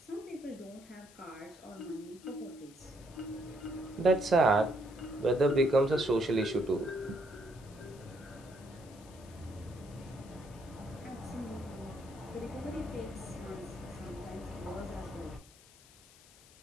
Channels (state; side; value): noise; left; hiss, 23 dB below the sound